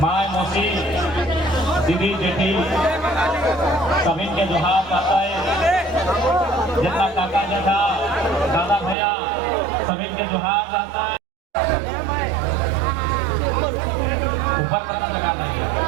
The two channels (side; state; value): left; drops out; at 9.0 s